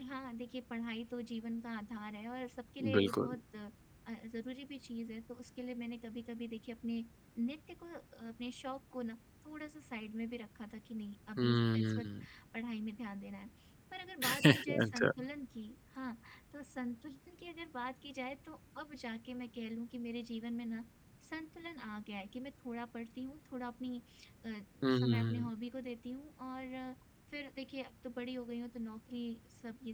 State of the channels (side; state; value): both; identical; correlation 1.00